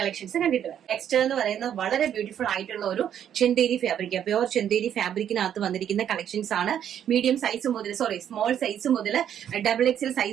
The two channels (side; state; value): left; quieter; 9.6 dB